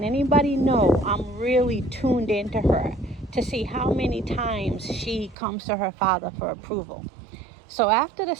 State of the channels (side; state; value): left; drops out; at 5.4 s